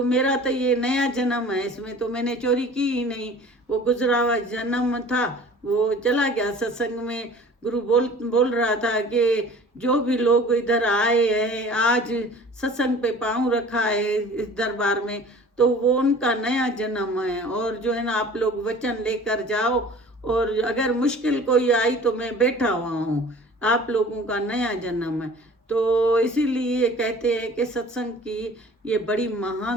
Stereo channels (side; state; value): both; normal; correlation 0.45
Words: मेरा तो ये नया जन्म है, इसमें तो मैंने चोरी की ही नहीं, वो गुजरा हुआ जन्म था वो चला गया। सत्संग में गुरु बोल रहा था कि जो भी लोग इधर आए हैं आज सत्संग पे पाँव रखा है इस दरबार में, तो वो उनका नया जन्म है। और जो है ना आप लोग वचन लेकर जाओ, और अगर मुश्किल कोई आई तो मैं बैठा हुआ हूँ, आप लोगों का नया जन्म है। तो इसीलिए कहते हैं कि सत्संग की ये बड़ी